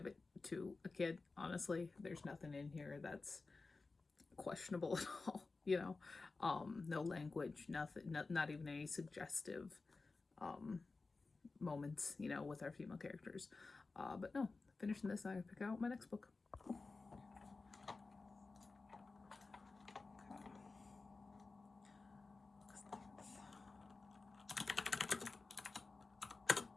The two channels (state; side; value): quieter; right; 3.8 dB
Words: it to a kid, honestly. There's nothing in here that's questionable at all, you know. No language, nothing, not even any suggestive moments, you know, with our female characters. But no, finishing this, I pick out my next book.